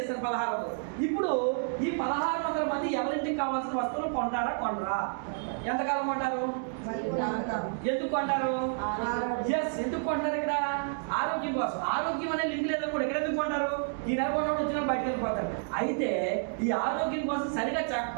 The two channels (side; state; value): left; silent; digital silence